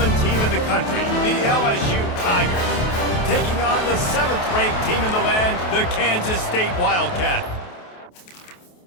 team in the country, the LSU Tigers, taking on the 7th-ranked team in the land, the Kansas State Wildcats.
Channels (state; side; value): late; right; 28 ms